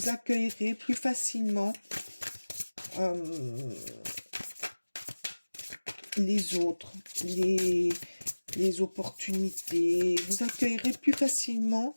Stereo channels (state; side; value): inverted; both; correlation -1.00